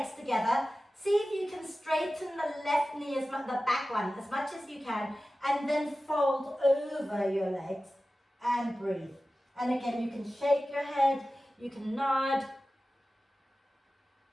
together. See if you can straighten the left knee, the back one, as much as you can, and then fold over your legs and breathe. And again, you can shake your head, you can nod.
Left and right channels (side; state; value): both; normal; correlation 0.95